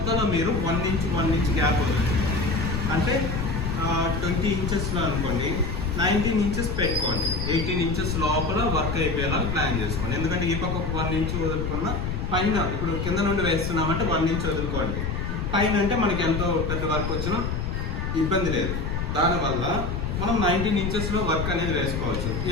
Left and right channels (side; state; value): left; noise; rumble, 3 dB below the sound